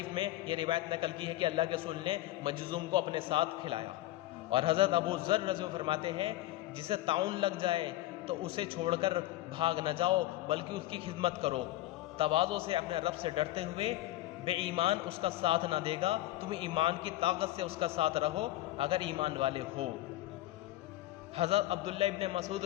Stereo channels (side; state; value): right; quieter; 15.8 dB